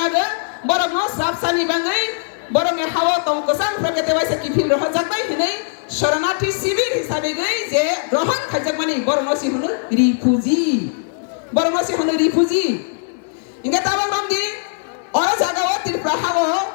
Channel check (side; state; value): right; silent; 66 dB below the other